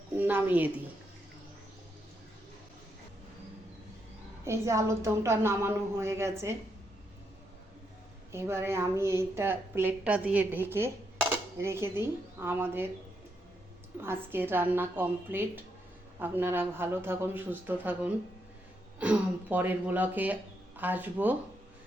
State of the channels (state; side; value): normal; both; correlation 0.80